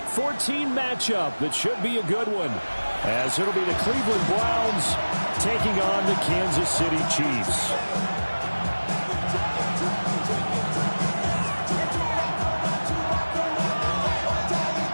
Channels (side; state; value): both; inverted; correlation -1.00